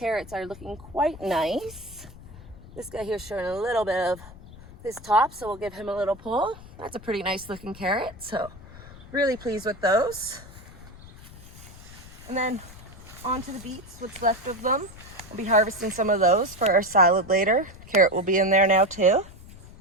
are looking quite nice. This guy here is showing a little bit of his top, so we'll give him a little pull. That's a pretty nice looking carrot, so really pleased with those. And then on to the beets, what's left of them. We'll be harvesting some of those for our salad later. Carrot will be in there now too.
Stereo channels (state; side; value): noise; left; rumble, 18 dB below the sound